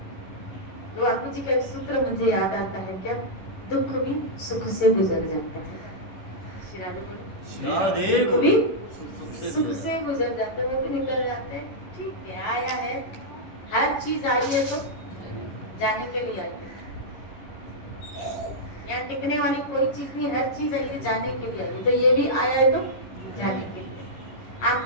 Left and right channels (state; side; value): late; right; 11 ms